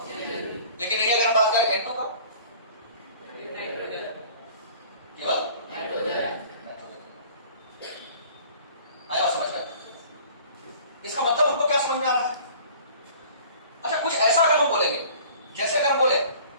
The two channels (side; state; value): both; inverted; correlation -0.48